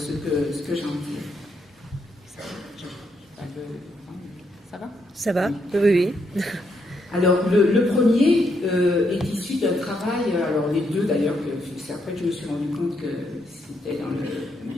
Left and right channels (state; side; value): normal; both; correlation 0.77